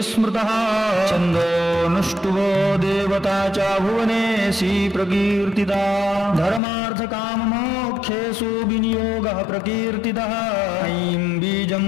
स्मृतः छन्दोऽनुष्टुभो देवता च भुवनेशी प्रकीर्तिता धर्मार्थकाममोक्षेषु विनियोगः प्रकीर्तितः ऐं बीजं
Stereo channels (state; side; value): drops out; right; at 6.6 s